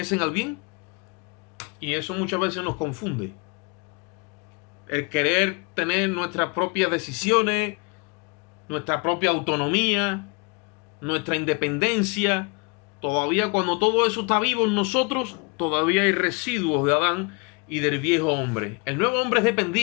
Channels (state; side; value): quieter; right; 31.0 dB